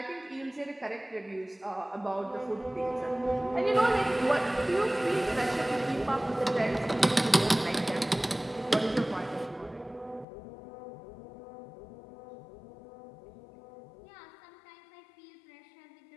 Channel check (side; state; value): right; drops out; at 10.2 s